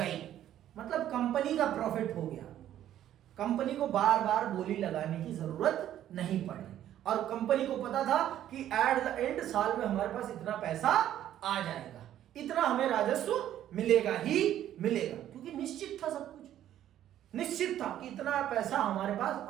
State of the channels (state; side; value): quieter; left; 11.7 dB